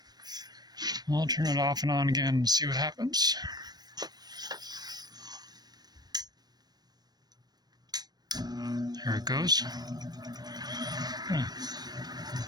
I'll turn it off and on again and see what happens. There it goes.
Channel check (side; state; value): left; late; 0.19 ms